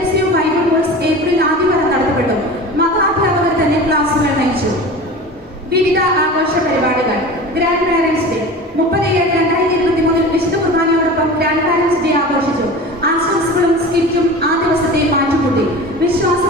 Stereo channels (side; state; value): both; normal; correlation 0.34